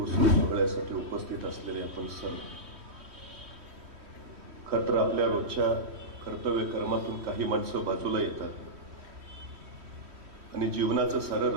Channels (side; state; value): left; late; 3.1 ms